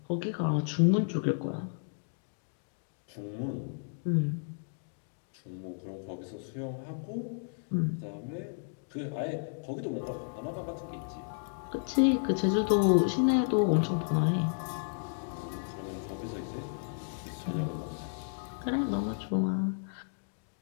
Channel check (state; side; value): silent; right; digital silence